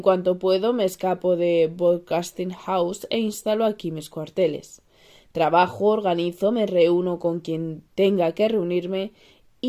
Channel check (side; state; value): both; identical; correlation 1.00